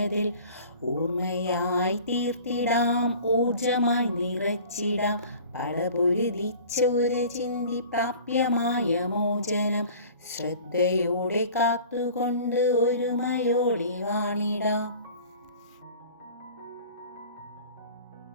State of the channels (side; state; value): both; inverted; correlation -0.45